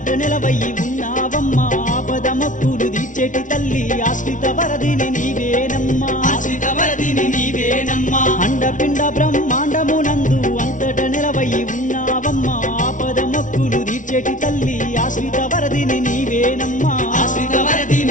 నిలవయి ఉన్నావమ్మా ఆపద మొక్కులు తీర్చేటి తల్లి ఆశ్రిత వరదిని నీవేనమ్మా ఆశ్రిత వరదిని నీవేనమ్మా అండపిండ బ్రహ్మాండమునందు అంతట నిలవయి ఉన్నావమ్మా ఆపద మొక్కులు తీర్చేటి తల్లి ఆశ్రిత వరదిని నీవేనమ్మా ఆశ్రిత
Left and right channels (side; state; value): right; late; 0.37 ms